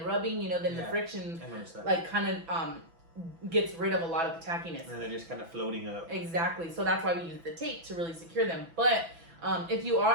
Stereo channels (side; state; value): left; late; 6.0 ms